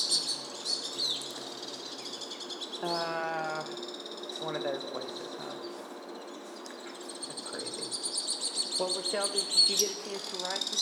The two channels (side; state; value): both; identical; correlation 1.00